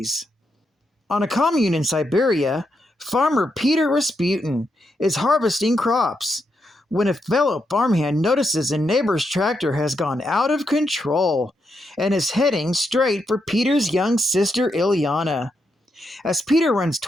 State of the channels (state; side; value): normal; both; correlation 0.82